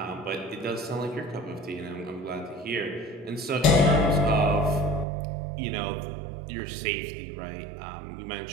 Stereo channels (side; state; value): left; drops out; at 5.1 s